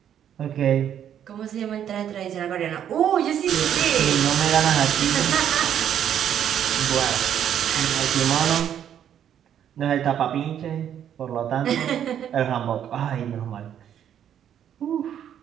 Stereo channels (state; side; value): quieter; left; 9.7 dB